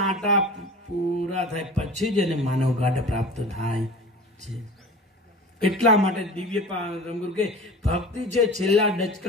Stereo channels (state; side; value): normal; both; correlation 0.37